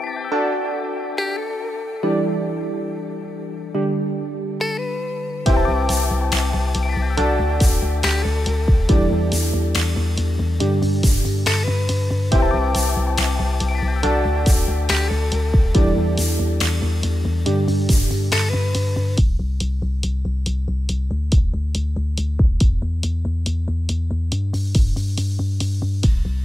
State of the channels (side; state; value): both; normal; correlation 0.91